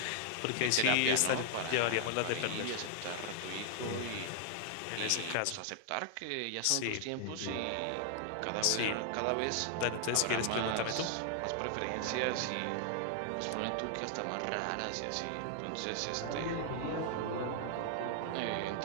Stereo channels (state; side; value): different; both; correlation 0.00